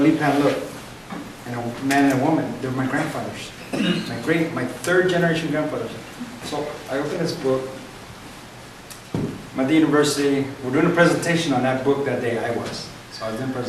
looked, and a man and a woman. They were my grandfathers, my third generation grandfathers. So I opened this book. I'm at the university. We're doing a presentation on that book that day. I was. So I was doing a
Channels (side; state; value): both; identical; correlation 1.00